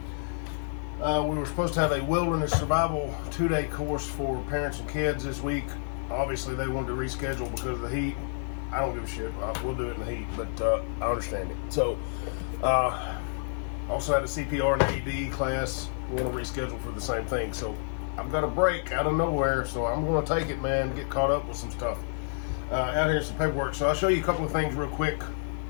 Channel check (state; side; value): silent; right; 59 dB below the other